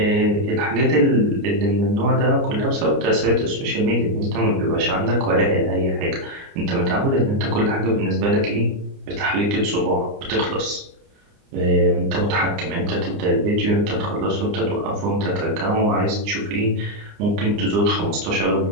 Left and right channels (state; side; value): late; left; 29 ms